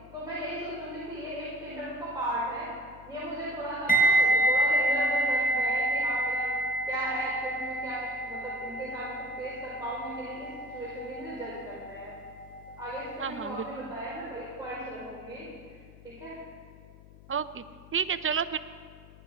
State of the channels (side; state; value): left; noise; hum, 20 dB below the sound